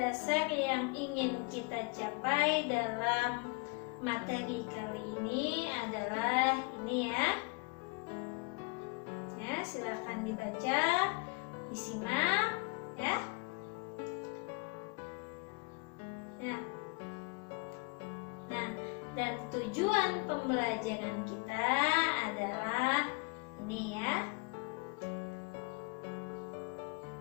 yang ingin kita capai dalam materi kali ini adalah ini ya. Ya, silakan dibaca, disimak ya. Nah, dan tujuan pembelajaran kita adalah ini ya.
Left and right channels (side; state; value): right; quieter; 30.0 dB